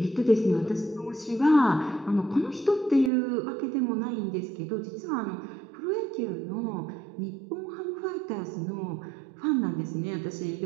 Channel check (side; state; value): left; drops out; at 3.1 s